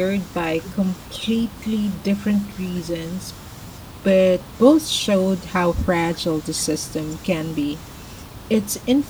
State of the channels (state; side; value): identical; both; correlation 1.00